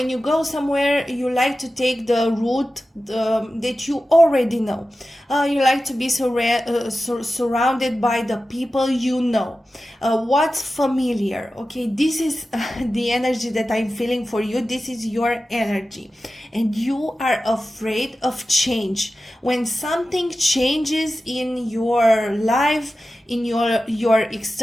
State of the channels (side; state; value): both; normal; correlation 0.94